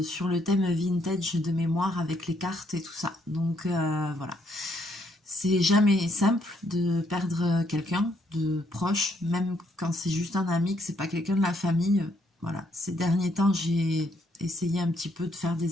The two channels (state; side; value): normal; both; correlation 0.71